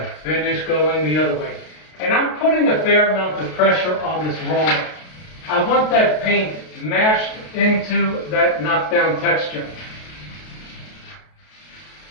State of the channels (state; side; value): late; right; 32 ms